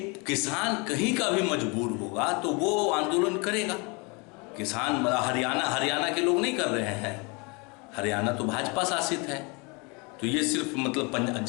किसान कहीं का भी मजबूर होगा तो वो आंदोलन करेगा। किसान हरियाणा के लोग नहीं कर रहे हैं, हरियाणा तो भाजपा शासित है। तो ये सिर्फ मतलब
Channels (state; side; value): quieter; right; 30.0 dB